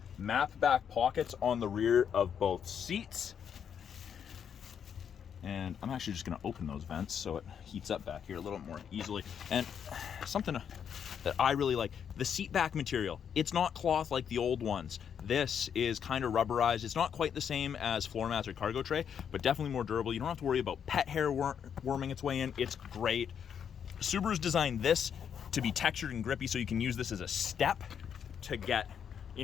Map back pockets on the rear of both seats. And I'm actually just gonna open those vents so it heats up back here a little more easily. And something that I really like, the seat back material. It's not cloth like the old ones. This is kind of rubberized. It's not quite the same as floor mats or cargo tray, but definitely more durable. You don't have to worry about pet hair worming its way in. It's great. Subaru's designed this to be textured and grippy, so you can use this as a step to get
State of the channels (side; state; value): right; quieter; 8.0 dB